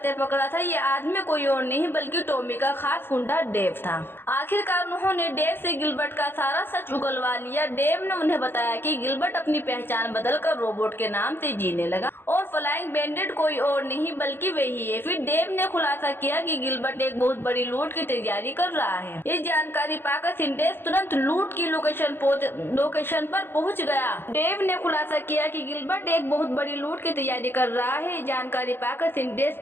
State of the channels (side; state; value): right; late; 0.10 ms